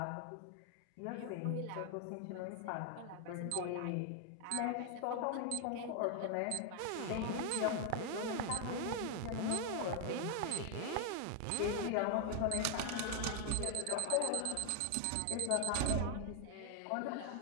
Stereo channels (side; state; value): both; different; correlation 0.00